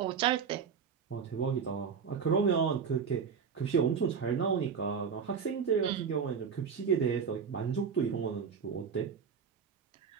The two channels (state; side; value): quieter; left; 6.5 dB